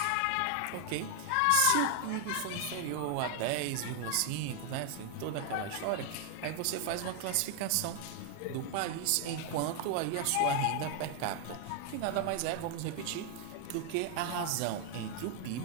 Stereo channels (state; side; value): different; both; correlation 0.00